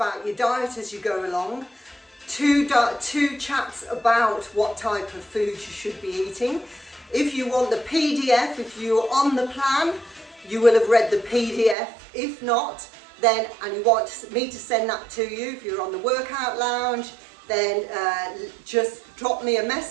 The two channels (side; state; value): left; drops out; at 11.8 s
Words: your diet as you go along. Two chats about what type of food you should be eating. If you want the PDF, if you're on the plan, you will have read the PDF. If not, then, and you want me to send that to you, if you're on the workout lounge, then just drop me a